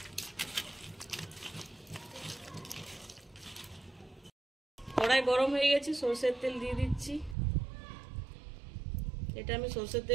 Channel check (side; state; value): left; drops out; at 7.4 s